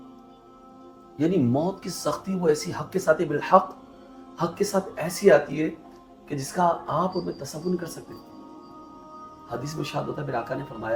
یعنی موت کی سختی وہ ایسی حق کے ساتھ ہے، بالحق حق کے ساتھ ایسی آتی ہے کہ جس کا آپ ان میں تصور نہیں کر سکتے. حدیث میں شاہد ہوتا ہے، میرے آقا نے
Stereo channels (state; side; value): identical; both; correlation 1.00